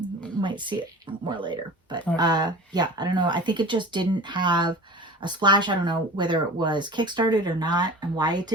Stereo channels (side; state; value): both; normal; correlation 0.38